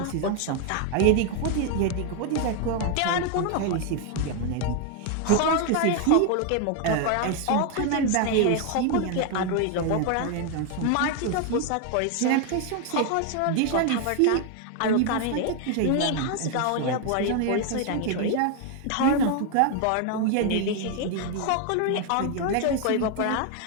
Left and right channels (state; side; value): different; both; correlation 0.01